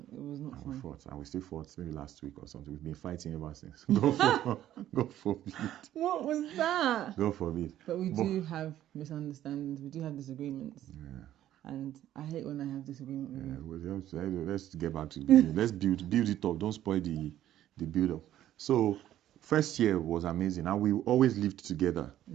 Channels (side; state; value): left; quieter; 12.4 dB